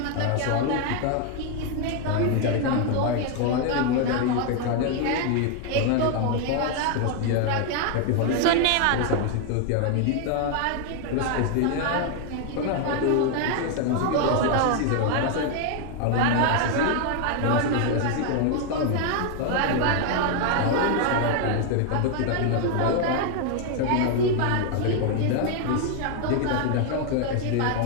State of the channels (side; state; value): both; different; correlation 0.00